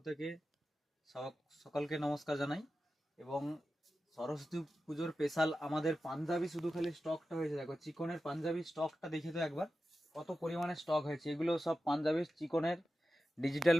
থেকে সকলকে নমস্কার জানাই। এবং সরস্বতী পুজোর স্পেশাল আমাদের পাঞ্জাবি শুধু খালি স্টকটা হয়েছে। দেখো চিকনের পাঞ্জাবি স্টকটা দেখে তো একবার কত পরিমাণে স্টক হয়েছে। এগুলো সব পাঞ্জাবি চিকনের, ডিজিটাল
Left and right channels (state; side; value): normal; both; correlation 0.92